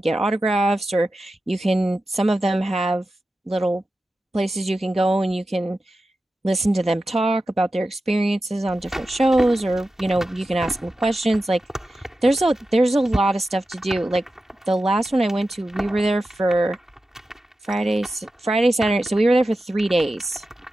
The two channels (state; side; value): normal; both; correlation 0.92